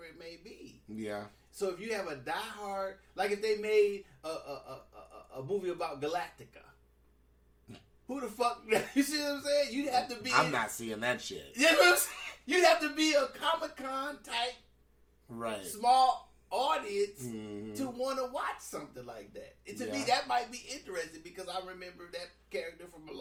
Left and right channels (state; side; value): identical; both; correlation 1.00